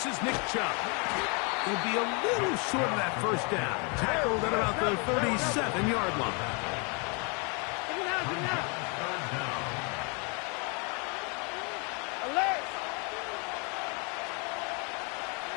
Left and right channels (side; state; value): right; quieter; 33.8 dB